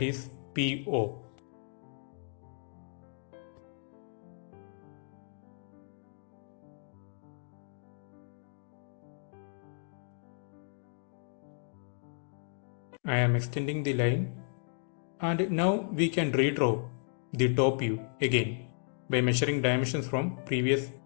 is PO. I am extending the line and now we can redraw the top view again by measuring dimensions from previous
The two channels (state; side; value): silent; right; digital silence